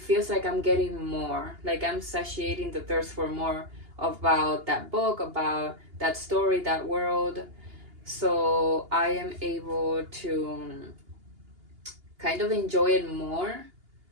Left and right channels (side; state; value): left; late; 2.8 ms